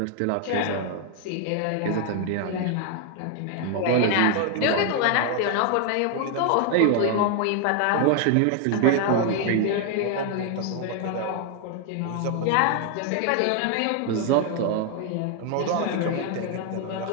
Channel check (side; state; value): both; different; correlation 0.00